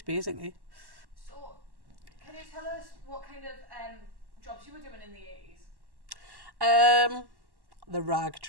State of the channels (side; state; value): left; late; 1.1 ms